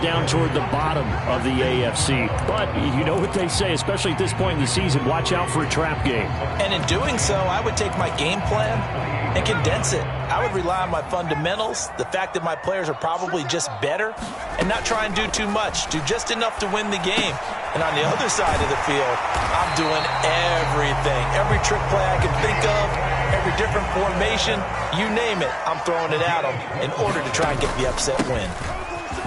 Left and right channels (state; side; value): identical; both; correlation 1.00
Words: down toward the bottom of the AFC. But you know what they say, especially at this point in the season, watch out for a trap game. And in doing so, I would take my game plan and condense it. I would rely on my fundamentals, the fact that my players are probably just better, and not try and do too much, do just enough to win the game. And on the other side of the field, I'm doing everything. Every trick play I can think of, every different formation, you name it, I'm throwing it at them in order to try and get the upset win.